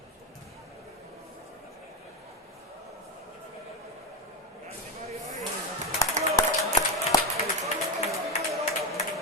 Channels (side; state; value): both; normal; correlation 0.12